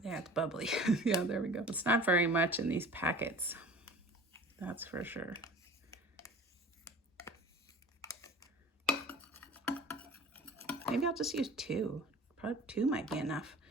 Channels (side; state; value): both; normal; correlation 0.42